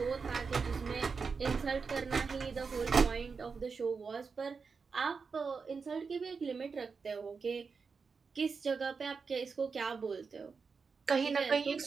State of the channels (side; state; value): left; quieter; 5.2 dB